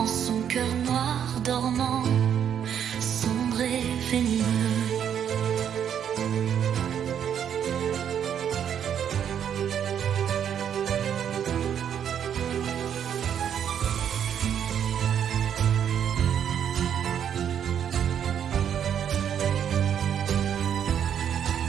son cœur noir dormant, sombre et venimeux.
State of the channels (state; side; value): quieter; left; 8.8 dB